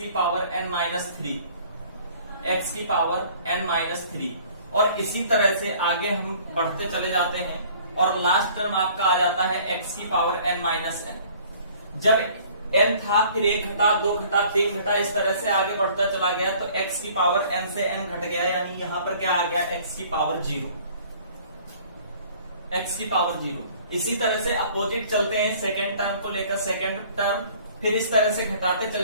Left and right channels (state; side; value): inverted; both; correlation -0.53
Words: पावर n माइनस 3, x की पावर n माइनस 3, और इसी तरह से आगे हम बढ़ते चले जाते हैं और लास्ट टर्म आपका आ जाता है x की पावर n माइनस n। जब n था फिर 1 घटा, 2 घटा, 3 घटा, इस तरह से आगे बढ़ता चला गया तो x की पावर n से n घट गया, यानी यहां पर क्या आ गया, x की पावर 0, x की पावर 0। इसी तरह से अपोजिट चलते हैं सेकेंड टर्म को लेकर, सेकेंड टर्म फिर इस तरह से घटाते